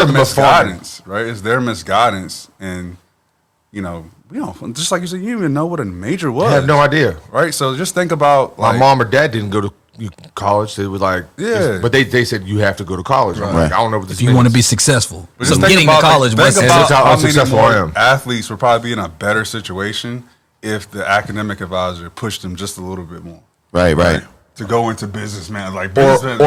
nothing but farming. misguidance, right? It's their misguidance, and we don't just like you said, you didn't even know what a major was. I have no idea. right? So just think about My like, mom or dad didn't go to college. They were like, Yeah. but they said you have to go to college. I'm Right. like, I don't know what this if you want to be means. successful. But So just think getting to about, college think was about That's how how many unsuccessful more I am. athletes would probably be in a better situation if the academic advisor pushed them just a little bit more. Right. To go into business, man. Like or business,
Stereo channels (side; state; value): both; identical; correlation 1.00